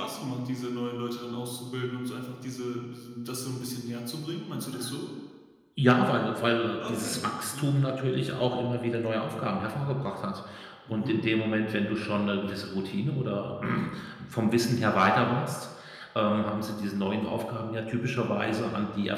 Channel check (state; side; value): identical; both; correlation 1.00